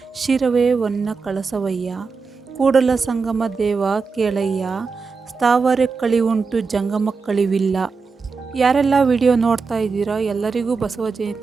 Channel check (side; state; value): left; quieter; 4.8 dB